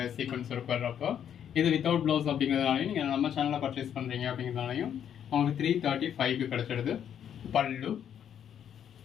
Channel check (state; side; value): quieter; right; 9.2 dB